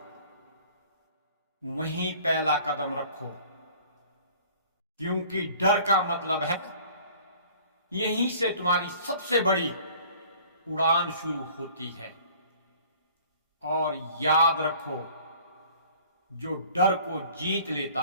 वहीं पहला कदम रखो, क्योंकि डर का मतलब है यहीं से तुम्हारी सबसे बड़ी उड़ान शुरू होती है। और याद रखो, जो डर को जीत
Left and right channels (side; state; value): both; inverted; correlation -0.51